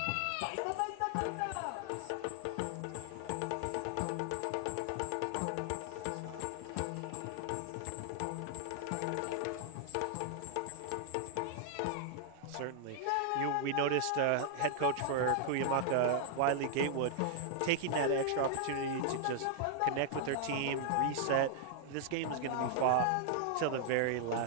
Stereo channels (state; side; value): different; both; correlation 0.00